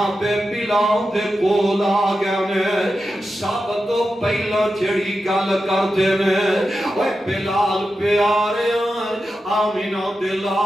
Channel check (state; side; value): normal; both; correlation 0.90